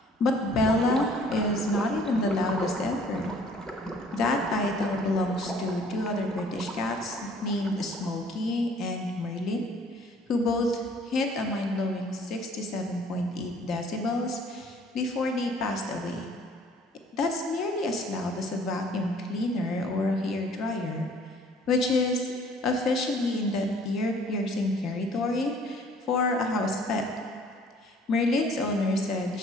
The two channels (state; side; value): normal; both; correlation 0.56